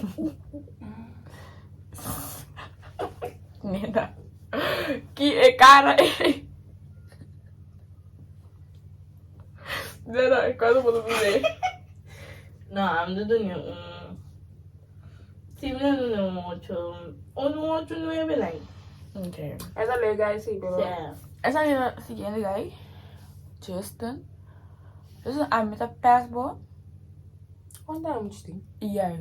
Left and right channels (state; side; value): identical; both; correlation 1.00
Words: Nena. Que cara. Nena, quase vou dizer. Não, I'm doing Sim, não 8. 8 não é bem. Okay. Essa legal sim, pero. Essa é a seguinte guy. Justin, me dá passport. Quanto é muito tem?